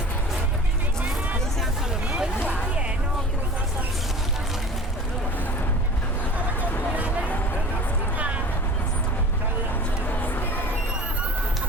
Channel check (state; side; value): normal; both; correlation 0.40